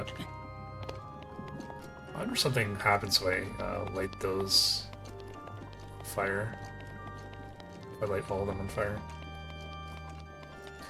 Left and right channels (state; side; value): identical; both; correlation 1.00